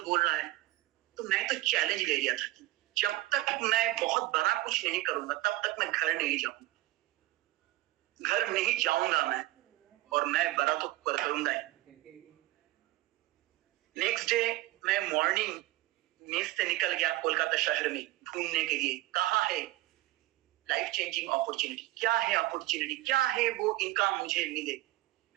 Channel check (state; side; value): quieter; left; 17.4 dB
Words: बोल रहा है, तो मैं तो चैलेंज ले लिया था कि जब तक मैं बहुत बड़ा कुछ नहीं करूंगा तब तक मैं घर नहीं जाऊंगा, घर नहीं जाऊंगा मैं, और मैं बड़ा तो करूंगा ही। नेक्स्ट डे मैं मॉर्निंग मेस से निकल गया कोलकाता शहर में ढूंढने के लिए, कहाँ है लाइफ चेंजिंग अपॉर्चुनिटी, क्या है अपॉर्चुनिटी, क्या है वो इनकम मुझे मिले।